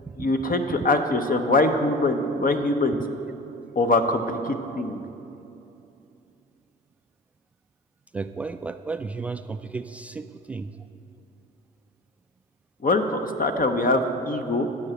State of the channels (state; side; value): normal; both; correlation 0.35